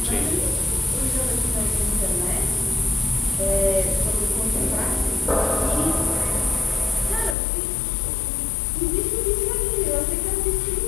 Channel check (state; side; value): drops out; right; at 7.4 s